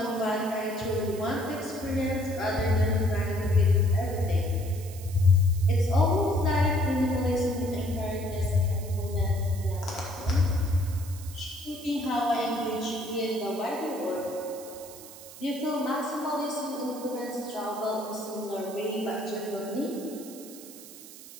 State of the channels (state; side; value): noise; right; hiss, 16 dB below the sound